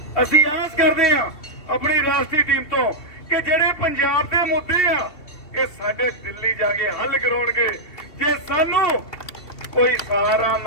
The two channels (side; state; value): right; late; 2.7 ms